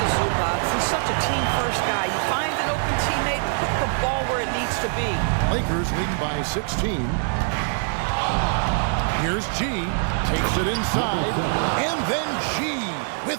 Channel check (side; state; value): left; silent; 63 dB below the other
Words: is Zubac. He's such a team-first guy. You find an open teammate, put the ball where it needs to be. Lakers leading by 16. Here's G, takes it inside, and then G